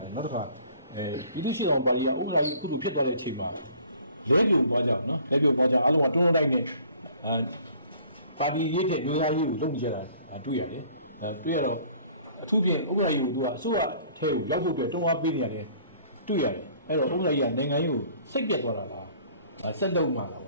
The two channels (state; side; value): inverted; both; correlation -0.54